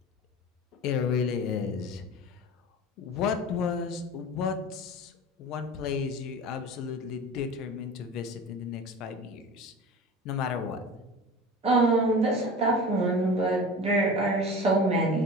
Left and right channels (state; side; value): normal; both; correlation 0.35